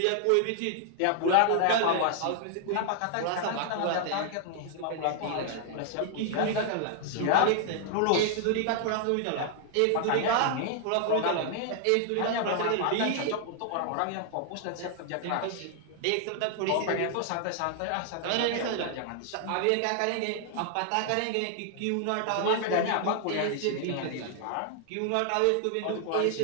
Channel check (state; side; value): different; both; correlation 0.00